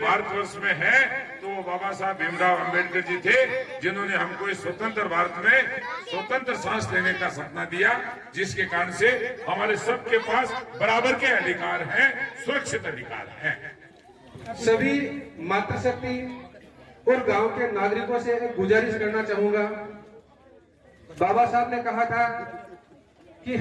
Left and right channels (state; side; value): identical; both; correlation 1.00